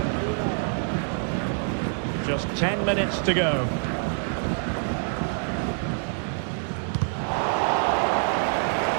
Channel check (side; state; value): left; silent; 56 dB below the other